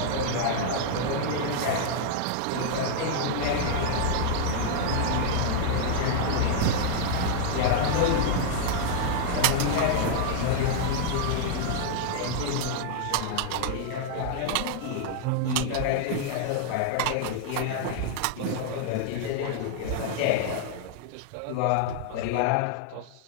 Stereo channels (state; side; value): different; both; correlation -0.01